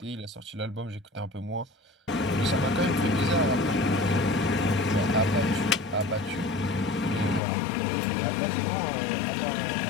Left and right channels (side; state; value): right; drops out; at 7.4 s